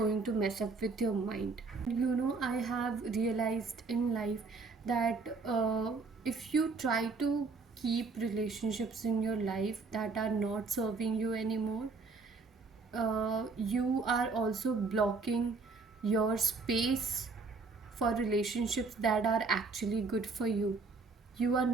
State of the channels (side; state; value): left; quieter; 4.2 dB